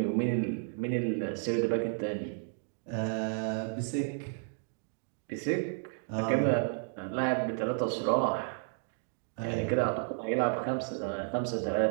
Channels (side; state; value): left; silent; 56 dB below the other